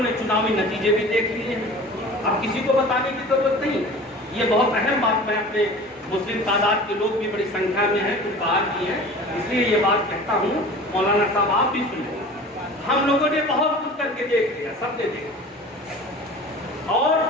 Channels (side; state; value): both; normal; correlation 0.40